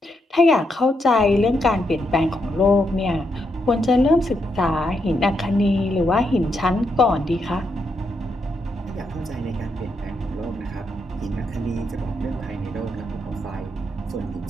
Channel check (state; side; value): normal; both; correlation 0.80